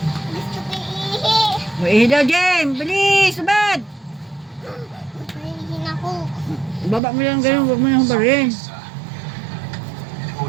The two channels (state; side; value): drops out; left; at 7.0 s